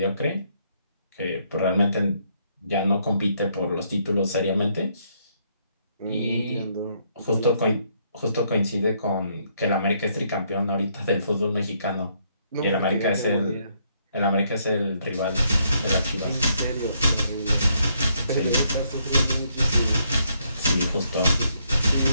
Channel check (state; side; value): inverted; both; correlation -0.72